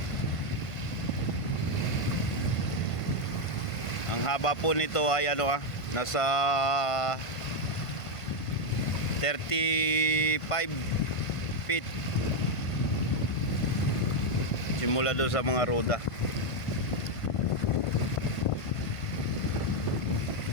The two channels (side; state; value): right; late; 1.5 ms